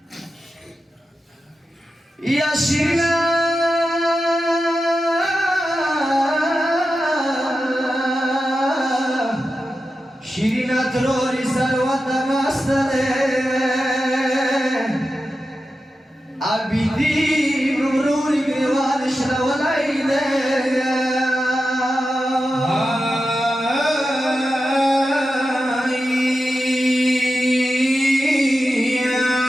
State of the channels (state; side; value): normal; both; correlation 0.91